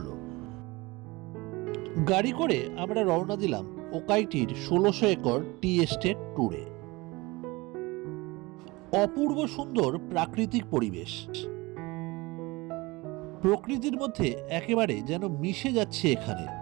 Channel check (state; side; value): quieter; left; 23.0 dB